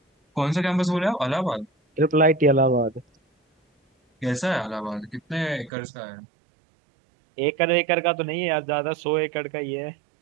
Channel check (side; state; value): left; drops out; at 5.7 s